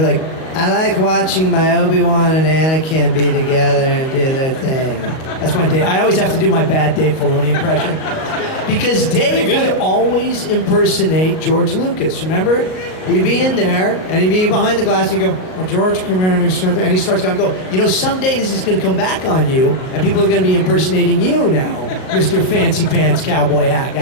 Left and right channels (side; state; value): right; late; 38 ms